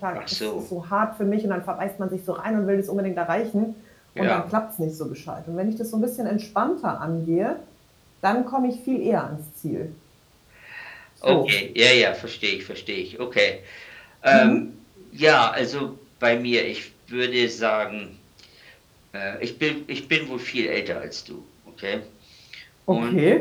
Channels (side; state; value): both; identical; correlation 1.00